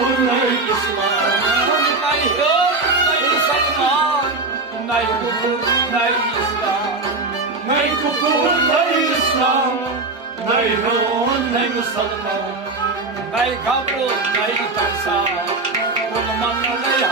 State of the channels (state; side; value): quieter; left; 3.4 dB